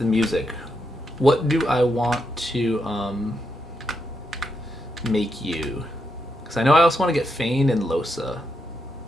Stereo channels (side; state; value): both; normal; correlation 0.82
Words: music, what do I want to make you? Because I know I also want to get Fane and Losa.